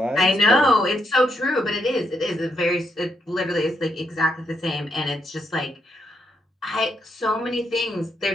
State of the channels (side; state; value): both; normal; correlation 0.78